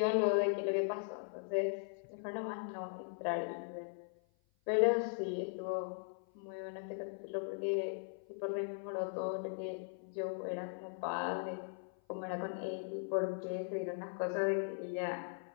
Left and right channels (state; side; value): silent; right; 52 dB below the other